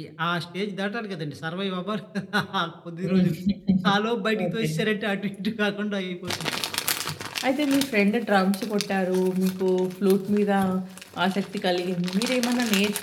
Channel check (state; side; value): identical; both; correlation 1.00